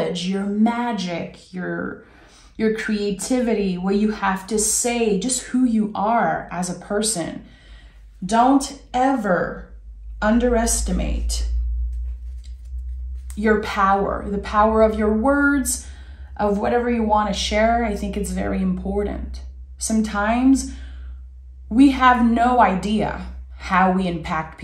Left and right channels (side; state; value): both; identical; correlation 1.00